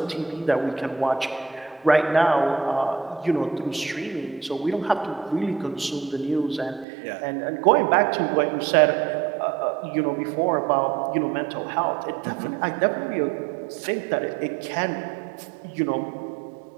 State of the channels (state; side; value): drops out; left; at 6.9 s